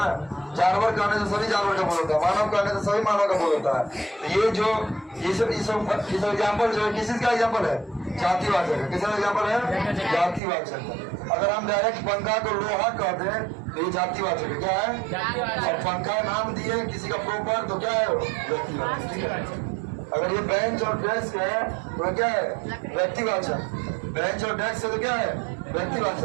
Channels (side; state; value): left; drops out; at 10.4 s